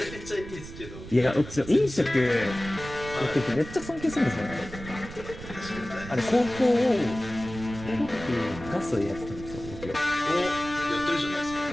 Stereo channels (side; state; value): right; noise; rumble, 13 dB below the sound